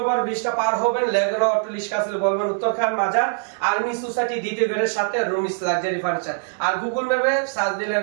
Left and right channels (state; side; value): silent; left; 57 dB below the other